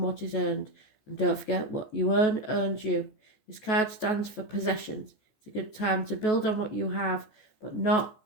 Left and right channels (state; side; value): late; right; 14 ms